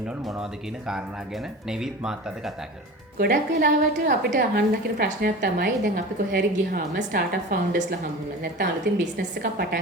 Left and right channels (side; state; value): both; normal; correlation 0.34